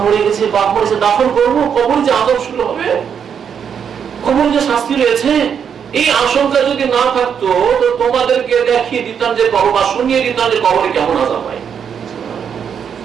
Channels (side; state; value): left; quieter; 7.6 dB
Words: মরে গেছে, বাপ মরেছে, দাফন করবো, কবরে যে আযাব শুরু হবে, কবরে যে শাস্তি রয়েছে, এই আশঙ্কা যদি না থাকতো তো তোমাদেরকে দেখিয়ে দিতাম যে কবর, বা শুনিয়ে দিতাম যে কবরে কেমন আযাব হয়।